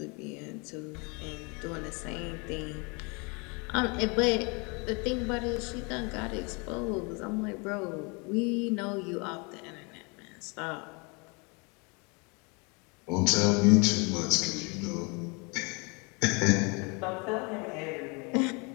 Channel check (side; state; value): right; quieter; 30.8 dB